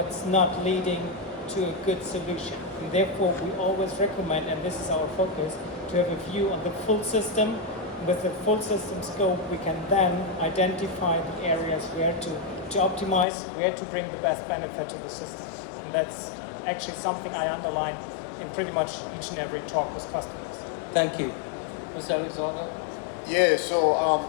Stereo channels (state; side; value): drops out; right; at 13.2 s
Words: not leading to a good solution. And therefore, we always recommend, and this is our focus, to have a view on the full system. With the full system scope, we can then identify the areas where to optimize, where to bring the best benefit to the system. And that's actually something I underline in pretty much each and every talk with customers. Thank you. Mr. Alexander? Yeah, so